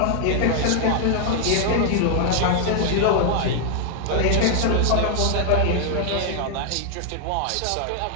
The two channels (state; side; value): different; both; correlation 0.00